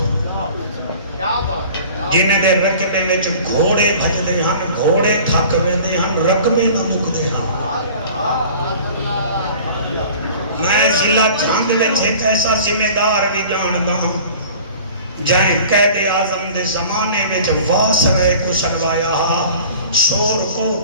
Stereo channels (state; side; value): inverted; both; correlation -0.45